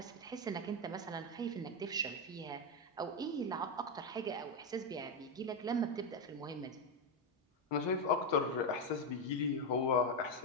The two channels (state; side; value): normal; both; correlation 0.07